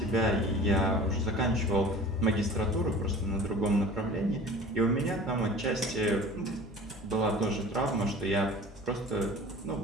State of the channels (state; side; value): normal; both; correlation 0.42